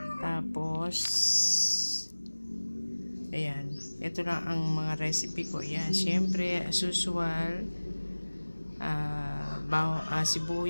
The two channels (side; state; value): both; inverted; correlation -1.00